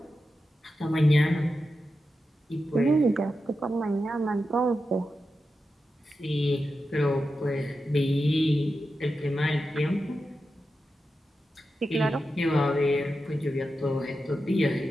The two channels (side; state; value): both; normal; correlation 0.90